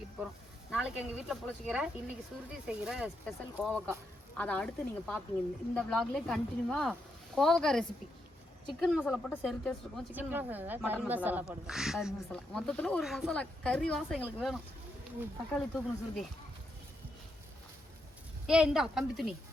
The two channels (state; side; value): normal; both; correlation 0.81